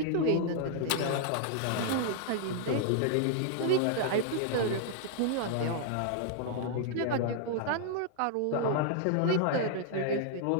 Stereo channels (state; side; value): different; both; correlation -0.01